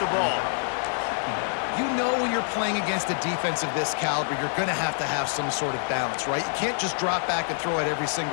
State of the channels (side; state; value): right; silent; 61 dB below the other